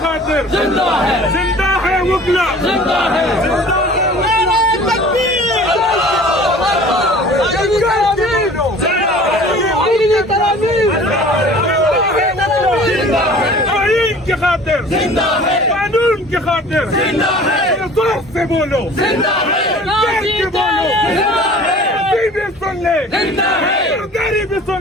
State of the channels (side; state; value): both; normal; correlation 0.46